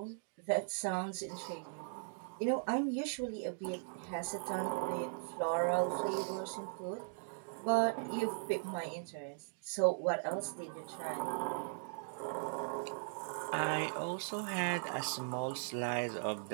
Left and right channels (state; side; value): silent; left; digital silence